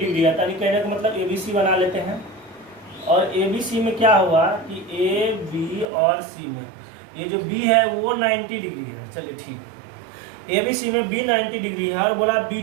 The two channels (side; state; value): left; drops out; at 5.9 s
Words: है, यानी कहने का मतलब ABC बना लेते हैं। और ABC में क्या हुआ कि A, B और C में ये जो B है वो 90 डिग्री है। चलिए ठीक है, ABC में B 90 डिग्री है और बोला